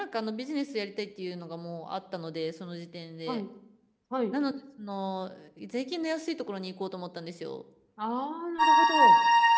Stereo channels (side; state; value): both; identical; correlation 1.00